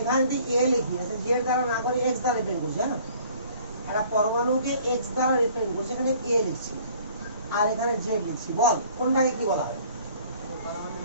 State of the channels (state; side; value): inverted; both; correlation -0.54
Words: যদি এ লিখি, জেড দ্বারা না করে এক্স দ্বারা রিপ্রেজেন্ট করছি, হ্যাঁ, একটা পরমাণুকে এক্স দ্বারা রিপ্রেজেন্ট করছি, এখানে এ লিখছি আর এখানে জেড লিখছি। বল কোনটাকে কি বলা হয়?